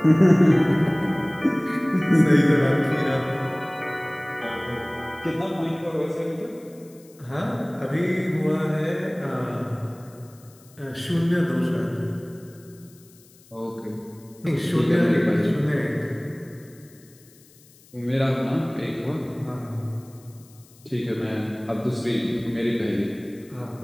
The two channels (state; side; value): noise; left; hiss, 27 dB below the sound